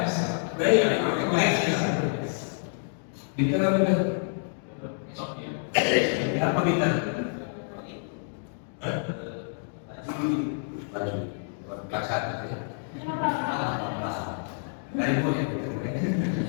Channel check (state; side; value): silent; right; digital silence